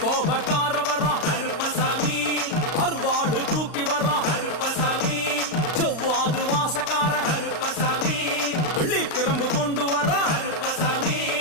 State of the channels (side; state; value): right; late; 35 ms